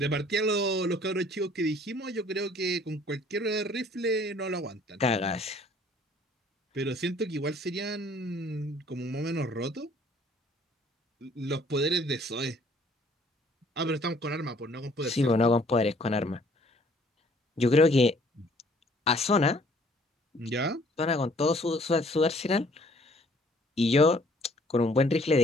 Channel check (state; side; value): normal; both; correlation 0.59